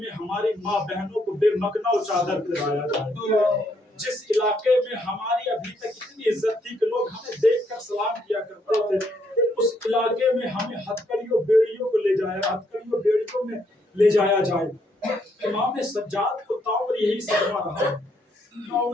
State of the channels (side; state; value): both; normal; correlation 0.73